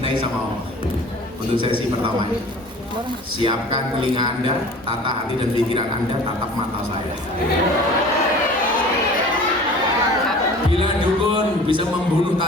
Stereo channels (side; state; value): both; normal; correlation 0.44